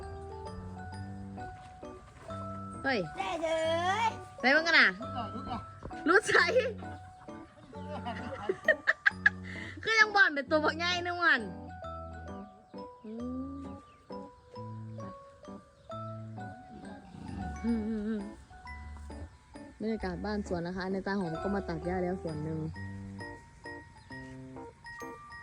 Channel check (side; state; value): both; identical; correlation 1.00